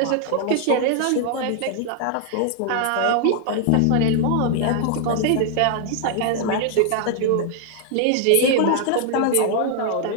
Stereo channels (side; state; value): both; different; correlation 0.00